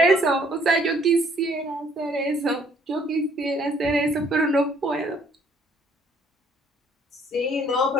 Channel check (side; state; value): both; normal; correlation 0.63